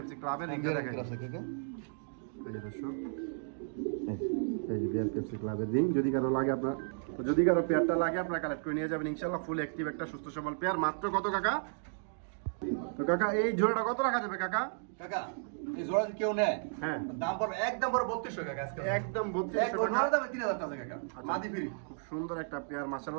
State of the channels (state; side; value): silent; left; digital silence